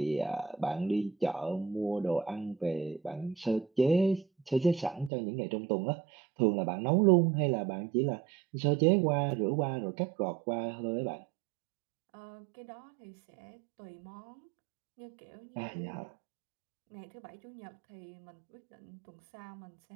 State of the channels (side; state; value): left; drops out; at 5.1 s